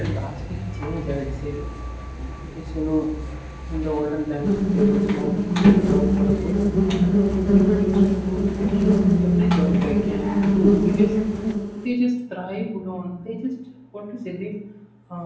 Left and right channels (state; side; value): identical; both; correlation 1.00